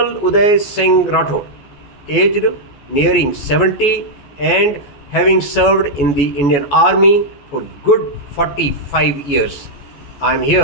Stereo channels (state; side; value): late; right; 14 ms